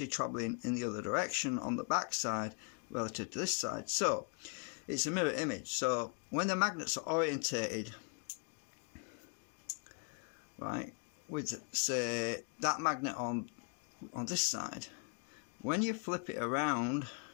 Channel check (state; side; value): quieter; right; 37.9 dB